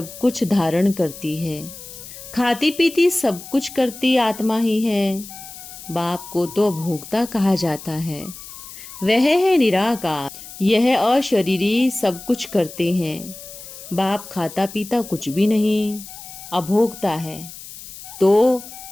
कुछ धारण करती है। खाती पीती सब कुछ करती आत्मा ही है। बाप को तो भोक्ता कहा जाता है। वह है निराकार। यह अशरीरी सब कुछ करते हैं। बाप खाता पीता कुछ भी नहीं, अभोक्ता है, तो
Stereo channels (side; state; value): left; noise; hiss, 14 dB below the sound